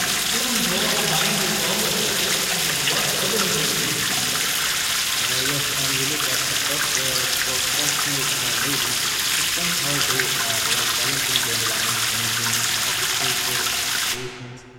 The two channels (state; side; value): identical; both; correlation 1.00